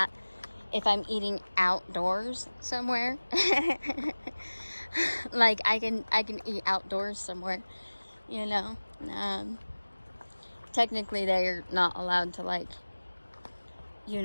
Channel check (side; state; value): both; inverted; correlation -1.00